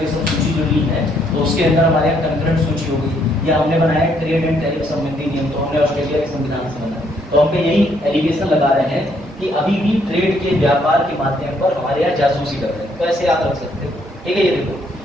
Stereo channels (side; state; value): both; normal; correlation 0.70